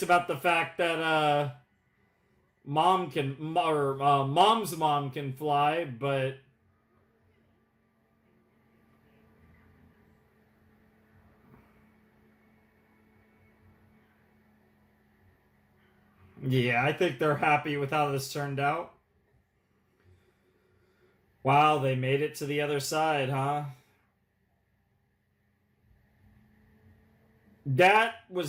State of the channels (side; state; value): both; identical; correlation 1.00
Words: about the fact that mom's mom can fly, but yeah, I think they're happy with how this turned out. Wow, they made it to the other side, huh? That